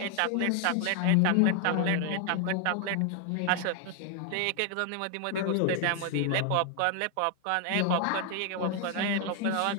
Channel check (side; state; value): both; different; correlation 0.00